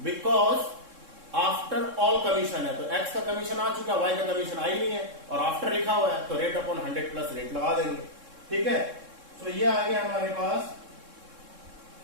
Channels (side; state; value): left; late; 3.6 ms